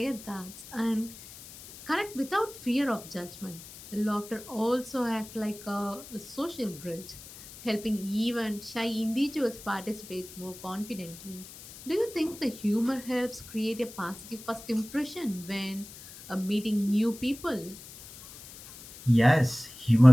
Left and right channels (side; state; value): left; noise; hiss, 16 dB below the sound